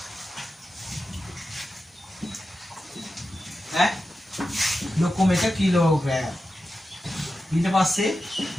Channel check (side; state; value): both; normal; correlation 0.91